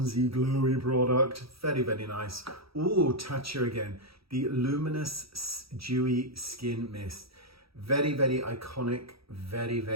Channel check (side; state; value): left; late; 0.76 ms